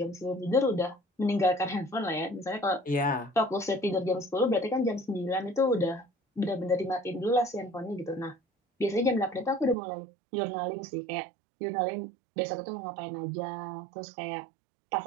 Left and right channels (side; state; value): left; drops out; at 9.8 s